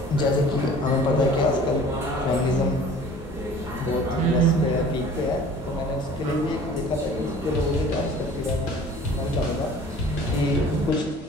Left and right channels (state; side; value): normal; both; correlation 0.47